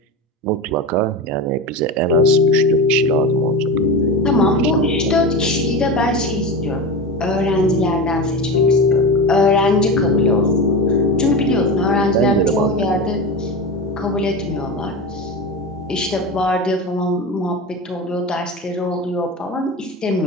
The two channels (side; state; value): both; normal; correlation 0.24